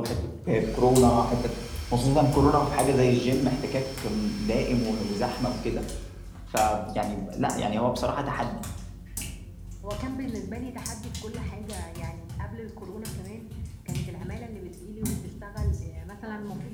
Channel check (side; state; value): both; identical; correlation 1.00